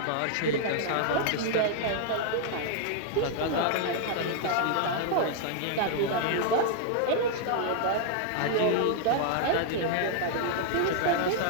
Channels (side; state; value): both; different; correlation -0.01